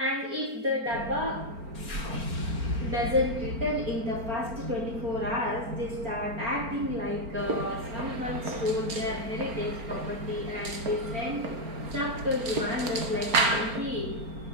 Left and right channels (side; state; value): left; late; 4.4 ms